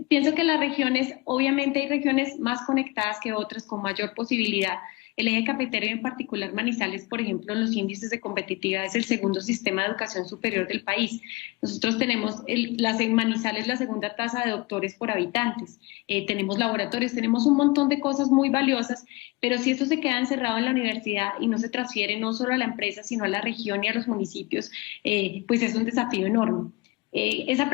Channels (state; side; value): quieter; right; 23.6 dB